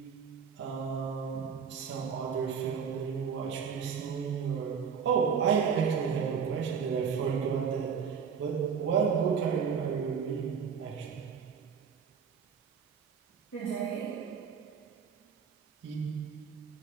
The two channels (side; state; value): left; quieter; 6.6 dB